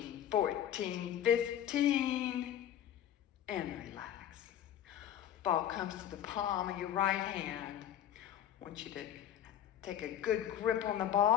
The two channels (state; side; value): quieter; right; 10.6 dB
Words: 14, 15, and relax. Ball comes to the palm of your right hand. I want you to take a good grip on the